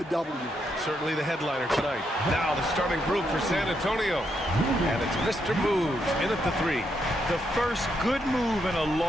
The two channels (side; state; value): both; normal; correlation 0.79